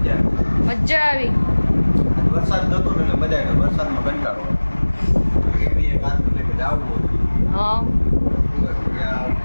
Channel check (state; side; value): inverted; both; correlation -1.00